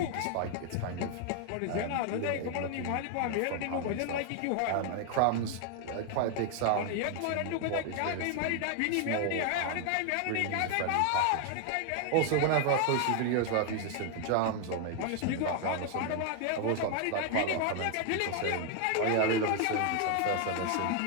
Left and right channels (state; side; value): different; both; correlation 0.00